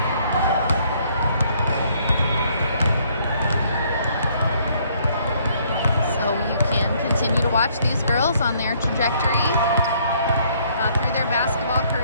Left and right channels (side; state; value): both; inverted; correlation -0.65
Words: Continue to watch these girls on their trajectory through their basketball